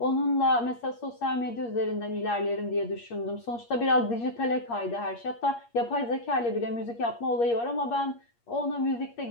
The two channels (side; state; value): right; late; 8.5 ms